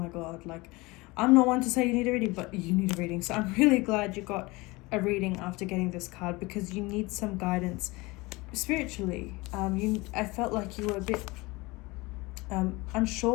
God, like, I'm not one to say you need a reading, but you need a reading. So I'm really glad you got a reading after getting this card, because you need some guidance spiritually. I felt like you were a bit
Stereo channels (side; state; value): right; quieter; 23.4 dB